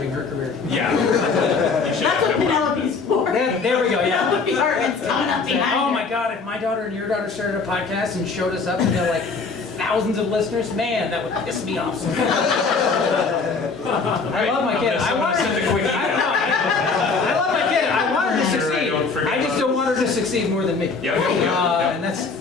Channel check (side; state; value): right; quieter; 4.6 dB